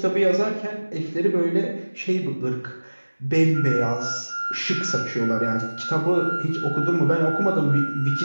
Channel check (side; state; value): both; inverted; correlation -1.00